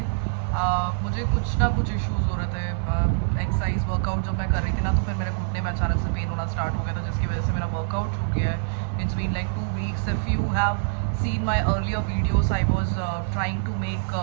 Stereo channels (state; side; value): silent; left; digital silence